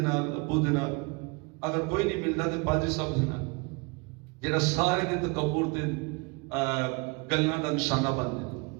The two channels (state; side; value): quieter; left; 29.1 dB